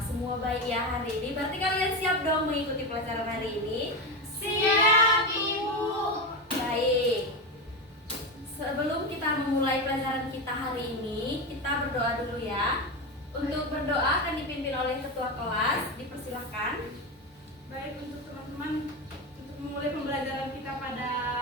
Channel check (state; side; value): normal; both; correlation 0.17